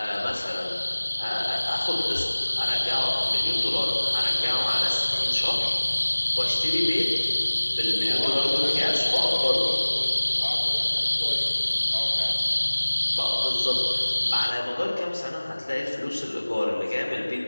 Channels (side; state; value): both; inverted; correlation -1.00